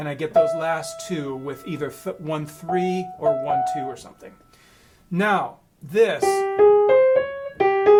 get those last 2 with either 1, 3 or 1, 2 or something. Now,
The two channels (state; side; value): identical; both; correlation 1.00